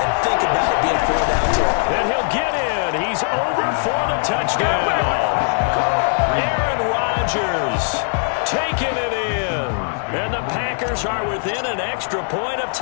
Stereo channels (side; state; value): right; silent; 66 dB below the other